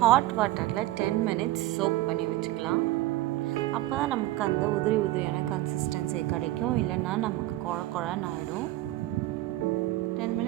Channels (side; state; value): left; quieter; 16.3 dB